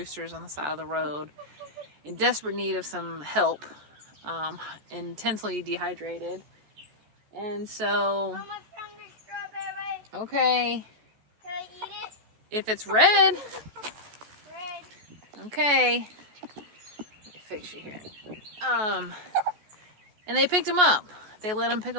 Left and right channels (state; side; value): late; left; 14 ms